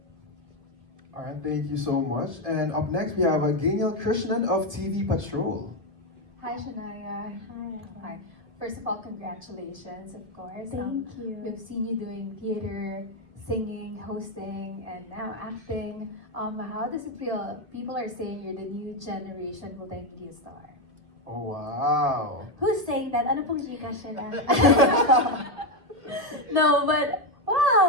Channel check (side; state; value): left; late; 1.7 ms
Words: All right, thank you so much. And up next, we have Gabriel Krishnan of TV Patrol. Hi, Shanaia. Hi. First of all, congratulations, of course. Thank you. We've seen you doing theater, singing, hosting, and now acting. How does it feel? People are saying you're the new generation multimedia star. Oh, wow. Who's saying that? Ano pong Chika siya? No, but